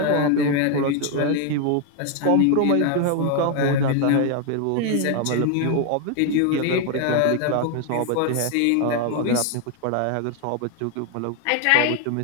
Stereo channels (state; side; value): different; both; correlation 0.01